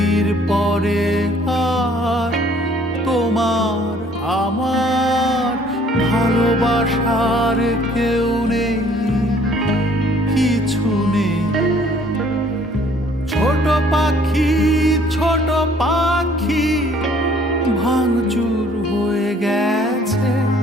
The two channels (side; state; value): both; normal; correlation 0.59